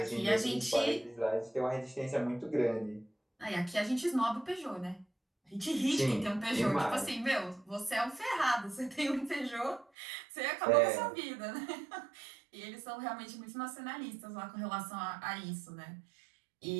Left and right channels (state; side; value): drops out; left; at 9.9 s